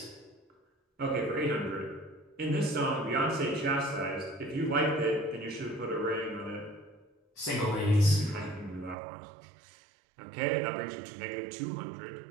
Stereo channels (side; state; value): left; drops out; at 9.0 s